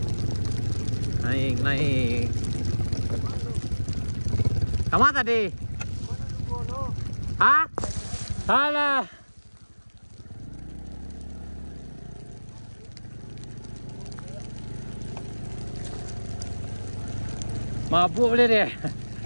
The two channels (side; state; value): both; inverted; correlation -1.00